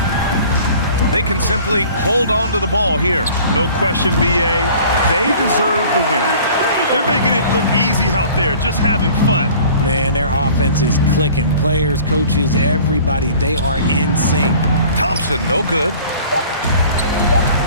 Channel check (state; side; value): inverted; both; correlation -0.48